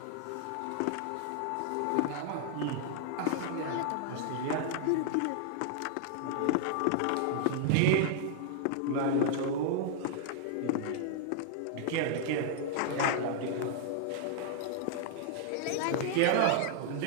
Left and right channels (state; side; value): different; both; correlation -0.01